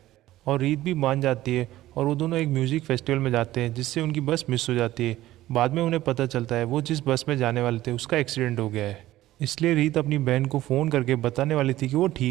और रीत भी मान जाती है और वो दोनों एक म्यूजिक फेस्टिवल में जाते हैं, जिससे उनकी बस मिस हो जाती है। बाद में उन्हें पता चलता है वो जिस बस में जाने वाले थे उसका एक्सीडेंट हो गया है। इसलिए रीत अपनी बहन को फ़ोन करके बताने वाली थी कि वो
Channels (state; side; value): quieter; left; 15.3 dB